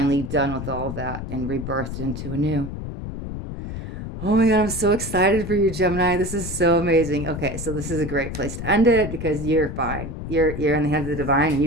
done with all of that and rebirthed into a new. Oh my God, I'm so excited for you, Gemini. This is so amazing. Okay, so this is a great place to end it because you're fine. You're in the hands of the divine and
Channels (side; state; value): left; noise; rumble, 7 dB below the sound